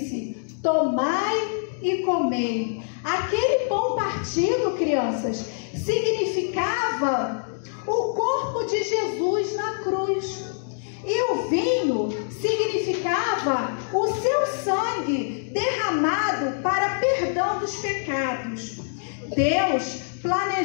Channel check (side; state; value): right; silent; digital silence